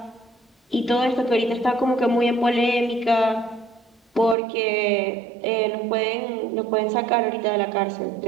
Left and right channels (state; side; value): drops out; left; at 4.4 s